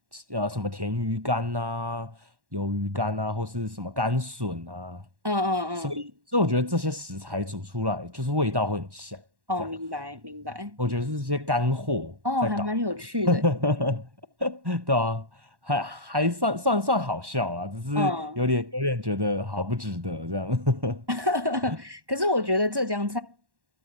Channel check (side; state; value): left; late; 1.1 ms